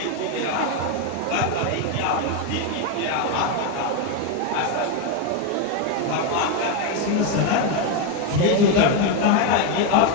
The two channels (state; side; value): different; both; correlation 0.02